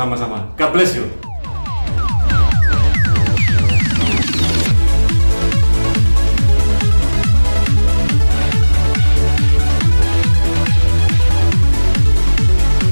God bless you.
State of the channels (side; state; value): both; inverted; correlation -1.00